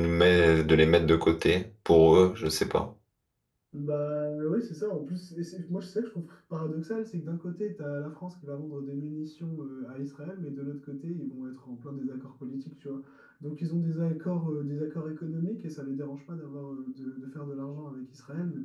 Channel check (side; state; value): both; identical; correlation 1.00